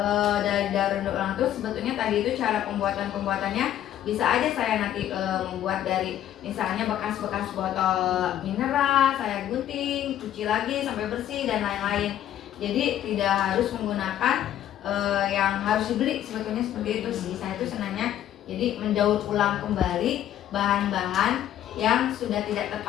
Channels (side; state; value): right; quieter; 11.5 dB